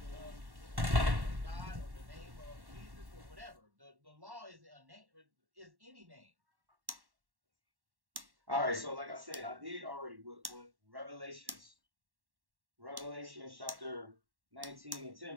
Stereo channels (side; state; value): left; late; 1.1 ms